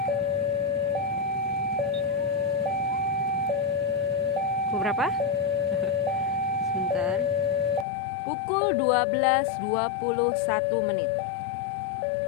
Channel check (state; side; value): drops out; right; at 7.9 s